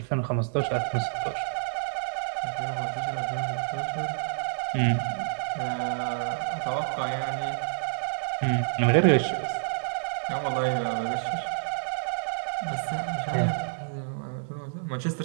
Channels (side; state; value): left; silent; digital silence